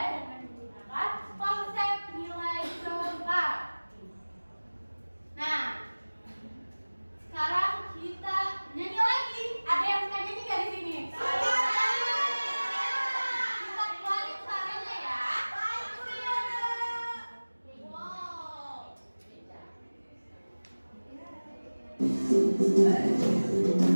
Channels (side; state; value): both; inverted; correlation -1.00